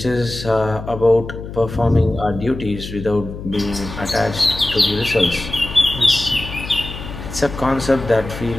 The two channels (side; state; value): left; noise; hum, 10 dB below the sound